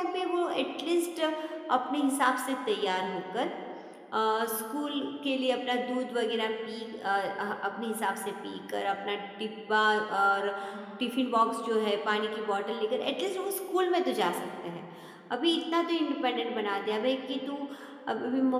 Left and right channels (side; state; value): both; identical; correlation 1.00